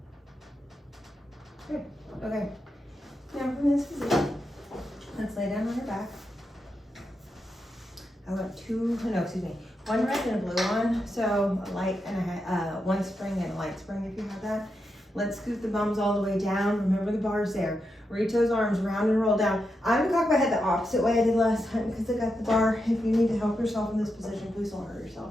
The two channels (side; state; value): both; normal; correlation 0.86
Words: Good. Okay. Now from this position, let's lay down on your back. I want one red and a blue one. So a light and one spring and a light spring if you have that. Let's scoot the bums all the way down. Remember the bar's there. Reach those arms round and roll down. I'm gonna cock my head the opposite way I did last time because I got the bar. If you need to help yourself in this position, please don't hurt